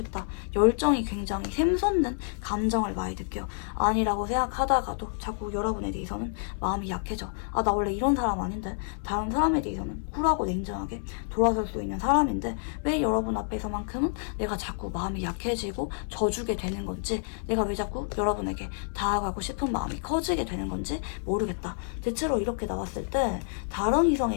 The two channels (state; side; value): silent; right; digital silence